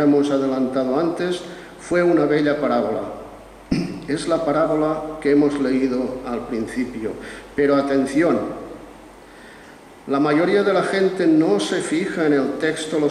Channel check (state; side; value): identical; both; correlation 1.00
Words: hemos adelantado antes, fue una bella parábola. Es la parábola que hemos leído al principio. Pero atención, la mayoría de la gente no se fija en el texto lo